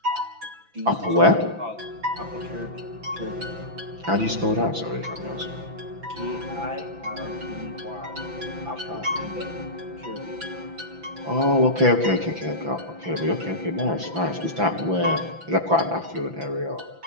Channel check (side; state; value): left; late; 5.9 ms